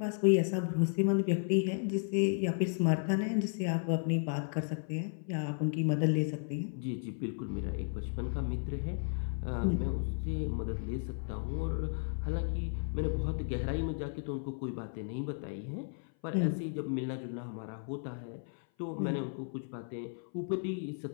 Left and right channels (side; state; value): right; silent; 55 dB below the other